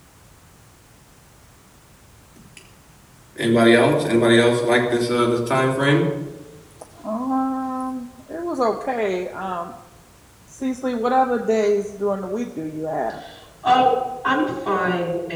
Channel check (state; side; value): identical; both; correlation 1.00